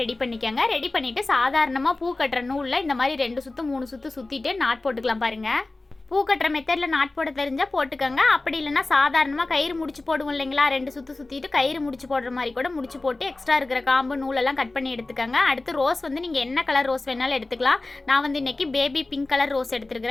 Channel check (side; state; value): right; quieter; 3.1 dB